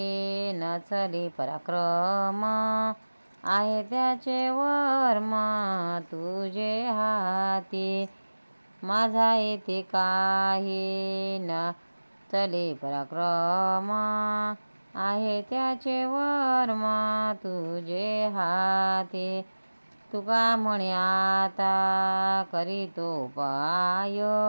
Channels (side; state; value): both; inverted; correlation -1.00